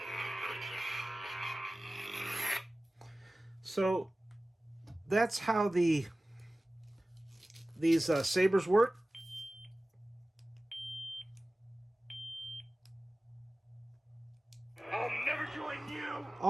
So that's how these sabers work. I'll never join you!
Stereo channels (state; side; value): normal; both; correlation 0.97